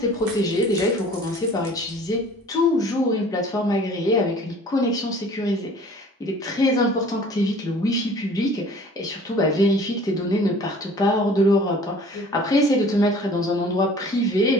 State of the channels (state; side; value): normal; both; correlation 0.48